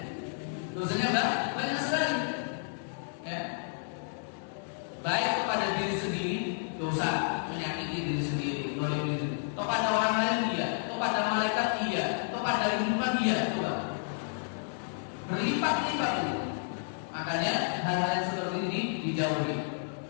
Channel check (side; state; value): right; silent; digital silence